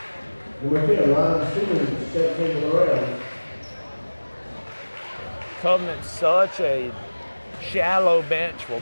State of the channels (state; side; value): inverted; both; correlation -1.00